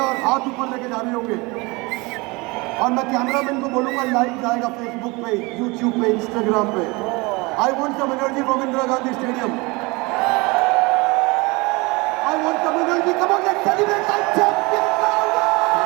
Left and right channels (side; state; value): left; quieter; 25.4 dB